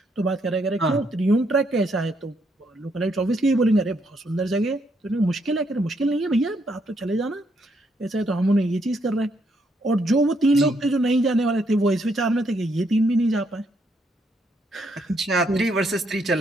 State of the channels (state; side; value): normal; both; correlation 0.74